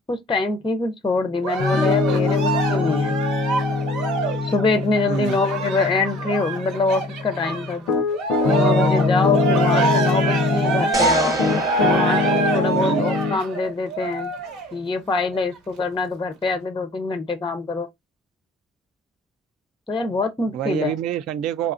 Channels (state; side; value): normal; both; correlation 0.49